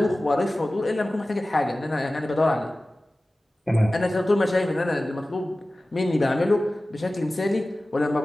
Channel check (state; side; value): normal; both; correlation 0.97